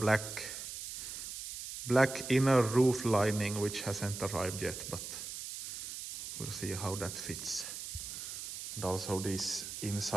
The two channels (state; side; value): noise; right; hiss, 8 dB below the sound